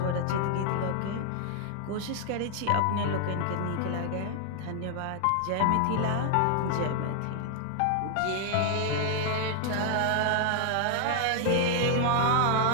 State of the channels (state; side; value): different; both; correlation 0.00